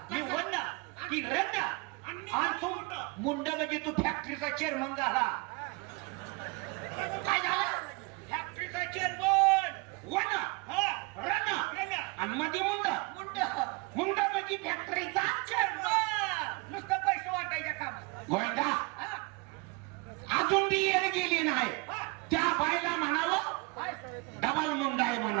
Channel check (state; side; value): quieter; left; 28.9 dB